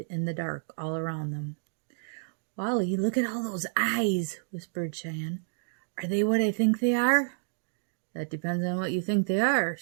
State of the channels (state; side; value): silent; left; digital silence